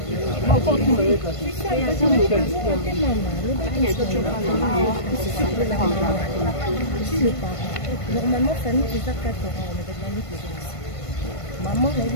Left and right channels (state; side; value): late; right; 1.5 ms